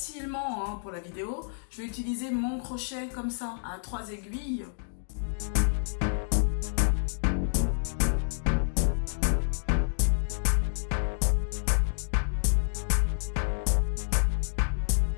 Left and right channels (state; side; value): silent; right; digital silence